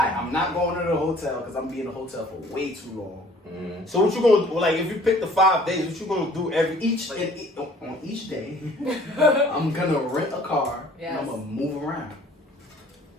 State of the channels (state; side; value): normal; both; correlation 0.53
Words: I'm not going to the hotel because I'm being in the hotel for way too long. So what you gonna do? Like if you pick the 5 days, what you gonna do On each day, I'm gonna rent a car and Yes. I'm gonna move around.